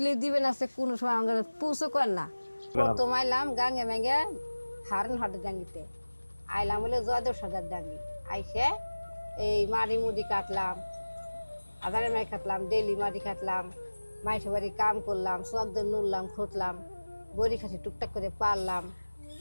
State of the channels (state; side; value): inverted; both; correlation -1.00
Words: দিবেন আছে, কোনো সময় আমাকে পুষো কর না। প্রথম আইলাম গাঙ্গে ম্যাঙ্গে হারন হাটের ডাঙ্গিতে আইলাম, বলে জয়দেব সর্দার ডাঙ্গি। আইসে এই মাড়ি মুড়ি কাটলাম, আধারে মাই কাটলাম, ডেলি মাটি কাটলাম, মাইসে বাড়ি কাম করলাম, চকদের নুরলাম, খুঁটলাম, বড়ি খাসি টুকটাক করে পারলাম।